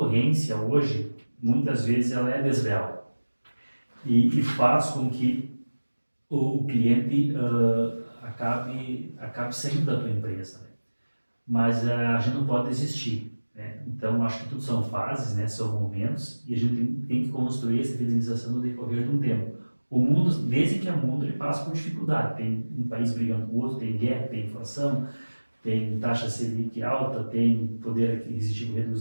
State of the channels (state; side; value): inverted; both; correlation -1.00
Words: hoje, muitas vezes, ela é desleal e faz com que o cliente acabe saindo da tua empresa, né? Mas a gente não pode desistir, né? Então acho que tudo são fases, né? São momentos, e a gente tem que construir essa fidelização no decorrer de um tempo. O mundo, desde que é mundo, ele passa por dificuldade. Tem um país brigando com o outro, tem guerra, tem inflação, tem taxa Selic alta, tem poder aquisitivo